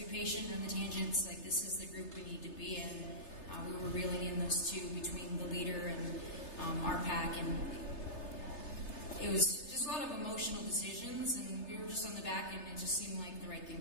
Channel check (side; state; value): right; late; 3.3 ms